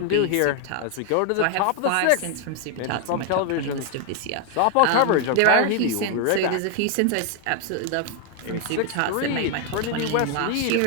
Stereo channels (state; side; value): different; both; correlation 0.00